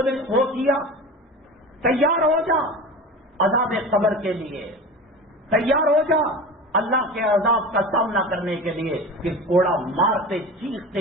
کیا، تیار ہو جا عذاب قبر کے لیے، تیار ہو جا اللہ کے عذاب کا سامنا کرنے کے لیے، کہ کوڑا مارتے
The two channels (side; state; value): both; normal; correlation 0.32